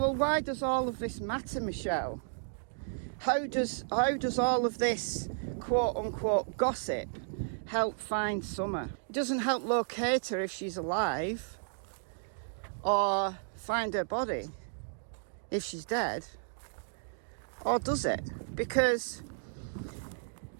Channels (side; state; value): left; silent; digital silence